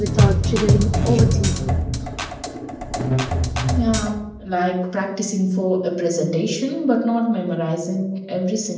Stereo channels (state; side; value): identical; both; correlation 1.00